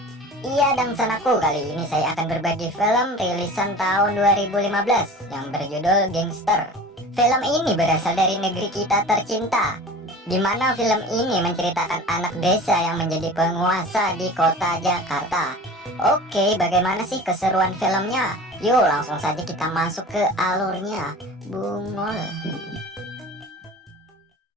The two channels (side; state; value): both; normal; correlation 0.38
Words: Iya, dan sanaku, kali ini saya akan berbagi film rilisan tahun 2015 yang berjudul Gangster. Film ini berasal dari negeri kita tercinta, di mana film ini menceritakan anak desa yang menjadi penguasa di kota Jakarta. Oke, bagaimana sih keseruan filmnya? Yuk langsung saja kita masuk ke alurnya. Bungol.